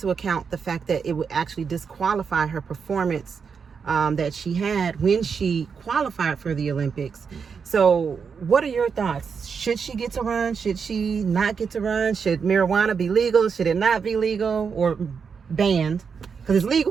account the fact that it would actually disqualify her performance that she had when she qualified for the Olympics. So what are your thoughts? Should she get to run? Should she not get to run? Should marijuana be legal? Should it not be legal or banned? Because it's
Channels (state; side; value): quieter; left; 6.0 dB